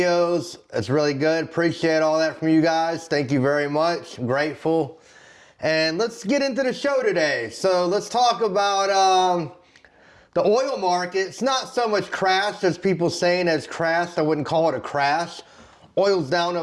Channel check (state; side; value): identical; both; correlation 1.00